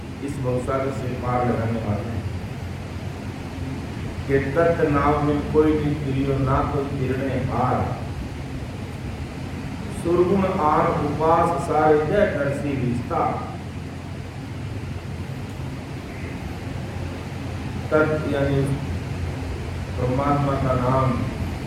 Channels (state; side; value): identical; both; correlation 1.00